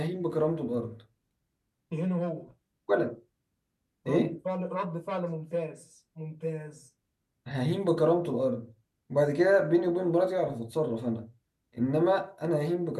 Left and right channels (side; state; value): both; identical; correlation 1.00